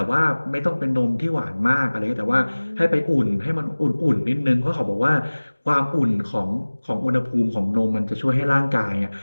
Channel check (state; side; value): inverted; both; correlation -1.00